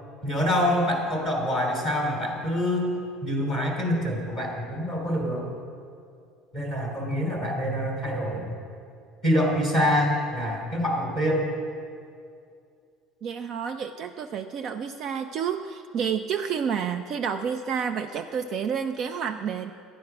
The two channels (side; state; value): both; normal; correlation 0.52